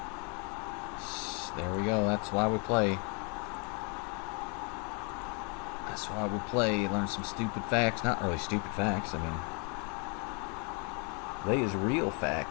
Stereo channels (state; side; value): quieter; right; 35.8 dB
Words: There we go. That's why we play. That's why we play. Learn some stupid facts. Not really stupid facts. I mean, they is real